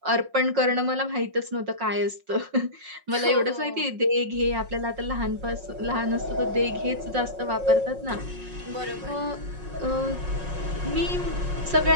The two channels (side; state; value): left; late; 5.5 ms